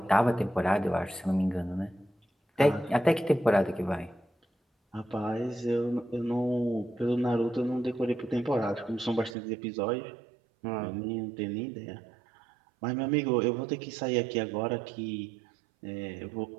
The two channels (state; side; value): drops out; left; at 9.3 s